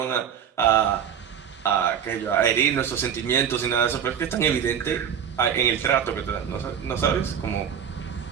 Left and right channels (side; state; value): left; quieter; 8.3 dB